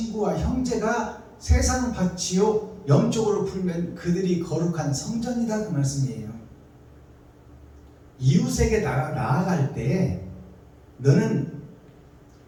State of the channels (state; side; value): identical; both; correlation 1.00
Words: 형제가 세상 밭이요, 영적으로 풀면 그들이 거룩한 성전이다, 그 말씀이에요. 이웃에게 나아갈 때 너는